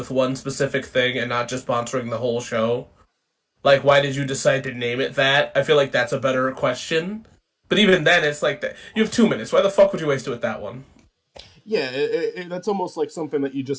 one specific thing and not just sponsoring the whole show? Like, why did you decide to name it that? I feel like that's a better question. But even then, it's like that. You have 2 minutes. Why the fuck would you waste it with that one? Yeah, that's almost like something that you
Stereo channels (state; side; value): identical; both; correlation 1.00